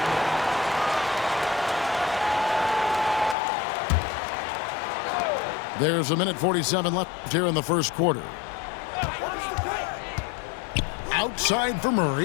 There's 1:47 left here in the first quarter. Outside for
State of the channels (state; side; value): drops out; right; at 3.4 s